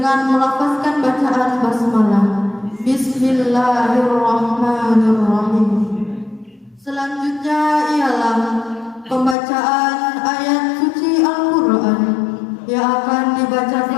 melafazkan bacaan basmalah. Bismillahirrahmanirrahim. Selanjutnya ialah pembacaan ayat suci Al-Quran yang akan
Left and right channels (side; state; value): right; drops out; at 9.3 s